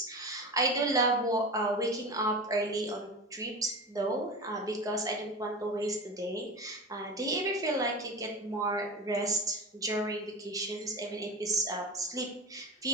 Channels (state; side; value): normal; both; correlation 0.28